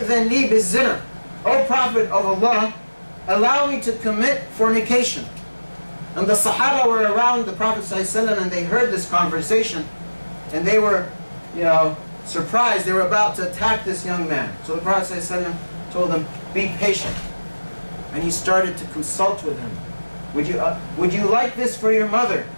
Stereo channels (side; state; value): both; inverted; correlation -1.00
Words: li biz-zina. O Prophet of Allah, allow me to commit fornication. And the Sahaba were around the Prophet ﷺ and they heard this conversation and they were, surprised. They were about to attack this young man. So the Prophet ﷺ told them, be patient. And he started to consult with him. Would you like this for your mother?